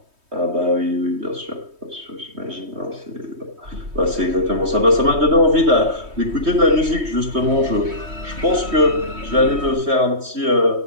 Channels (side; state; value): left; late; 3.2 ms